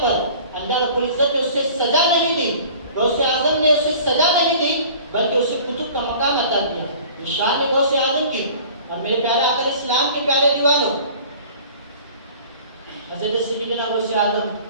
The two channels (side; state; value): both; inverted; correlation -0.46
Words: پر اللہ رب العزت نے اسے سزا نہیں دی، غوث اعظم نے اسے سزا نہیں دی، بلکہ اسے کتب کا مقام عطا کیا۔ یہ شان ہے غوث اعظم کی۔ اور میرے پیارے آقا اسلام کے پیارے دیوانوں، حضرت سیدنا غوث اعظم